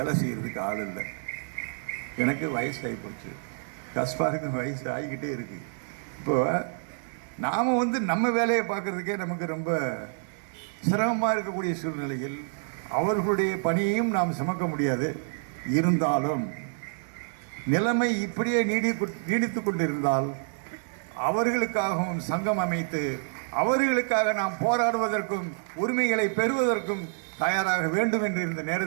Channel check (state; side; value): silent; left; digital silence